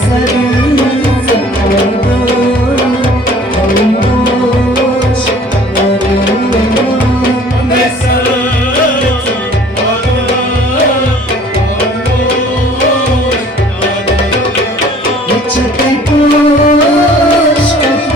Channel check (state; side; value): normal; both; correlation 0.52